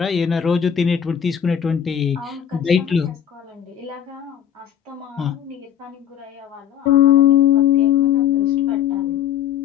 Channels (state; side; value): quieter; right; 9.4 dB